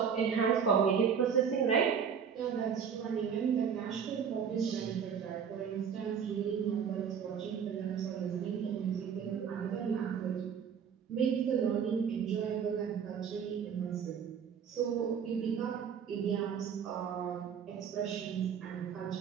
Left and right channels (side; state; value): left; quieter; 7.3 dB